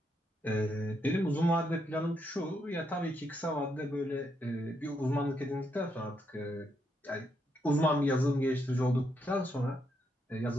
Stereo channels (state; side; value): normal; both; correlation 0.78